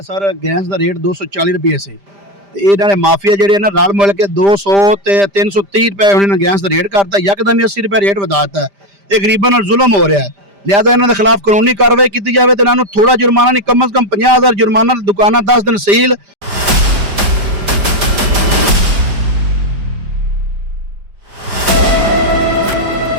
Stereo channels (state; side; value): late; left; 5.0 ms